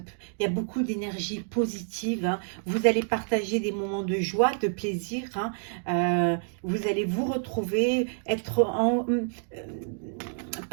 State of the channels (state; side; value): silent; left; digital silence